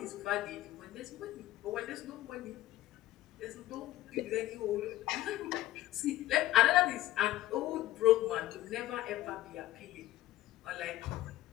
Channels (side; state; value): right; quieter; 15.4 dB